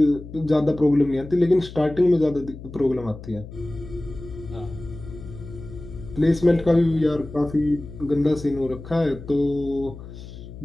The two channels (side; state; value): left; noise; hum, 14 dB below the sound